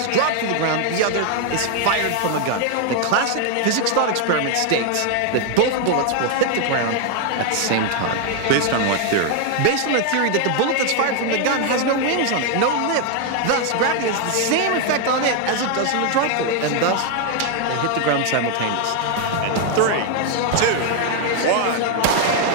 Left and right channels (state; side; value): different; both; correlation 0.00